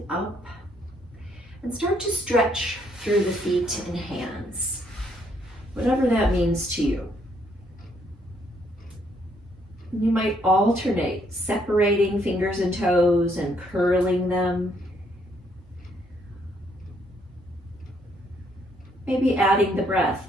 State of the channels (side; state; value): both; normal; correlation 0.70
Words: up. And start to stretch through the feet and hands, whatever that means to you. You might alternate, separating fingers and toes and curling them. Maybe adding the breath,